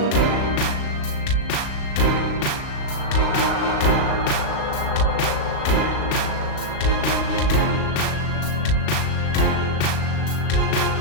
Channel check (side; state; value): right; late; 37 ms